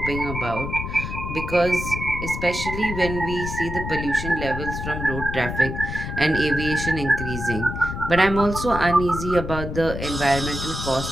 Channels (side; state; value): left; noise; rumble, 6 dB below the sound